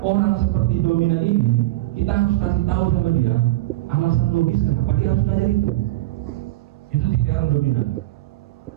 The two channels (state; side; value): quieter; left; 17.9 dB